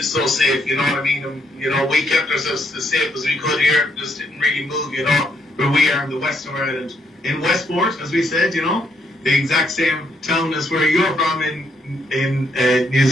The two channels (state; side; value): normal; both; correlation 0.73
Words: so safe, you know what I mean? And, we kept ourselves as safe as we could here, just didn't really move, where we are in the west of Ireland. In Westport, as we said, the exact same town as where you're from in New